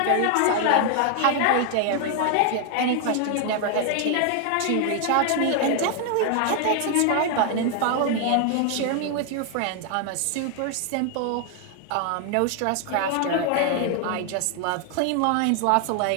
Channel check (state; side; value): different; both; correlation 0.00